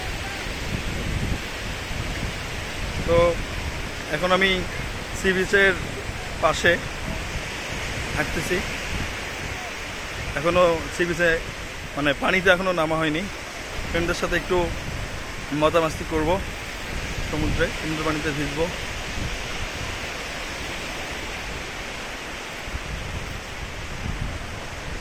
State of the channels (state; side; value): identical; both; correlation 1.00